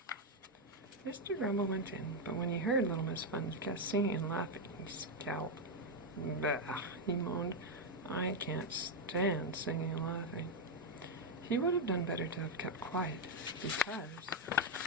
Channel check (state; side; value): normal; both; correlation 0.04